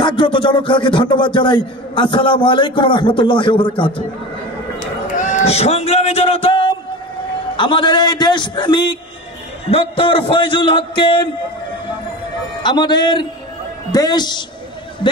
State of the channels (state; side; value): normal; both; correlation 0.31